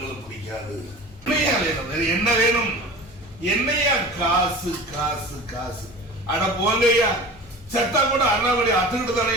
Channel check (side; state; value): left; noise; hum, 23 dB below the sound